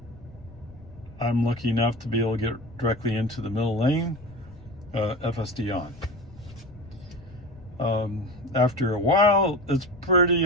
lucky enough to be able to get directly into the middle lane, FSD on. After a while, it's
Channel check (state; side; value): noise; left; rumble, 21 dB below the sound